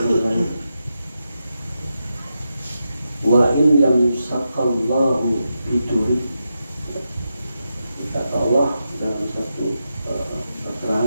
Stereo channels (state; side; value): inverted; both; correlation -0.87